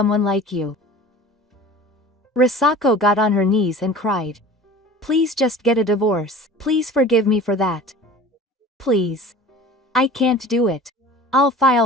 like you. Risako got on her knees and cried. Please just get a divorce. Please forgive me for that. Please. I can't do it. I'll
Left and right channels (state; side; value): normal; both; correlation 0.41